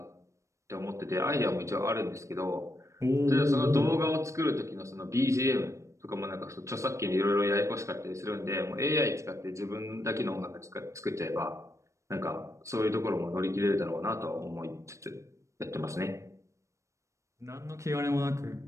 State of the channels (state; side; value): late; left; 0.15 ms